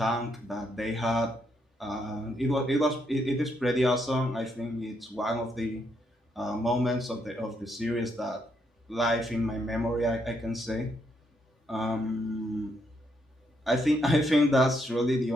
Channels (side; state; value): both; normal; correlation 0.76